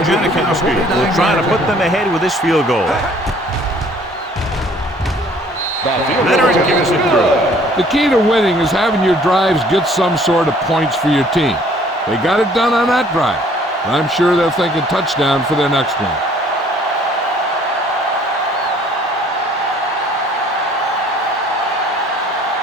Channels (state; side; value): normal; both; correlation 0.57